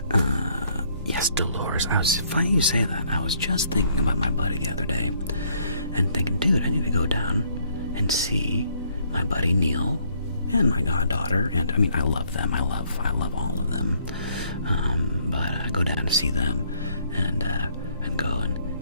Yes, Dolores. Funny you say that. I was just thinking about my buddy the other day, and thinking, dude, I need to go down and see my buddy Neil and my goddaughter. And I mean, I love them. I love all of them. But I go down to see them, and go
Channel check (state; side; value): inverted; both; correlation -0.67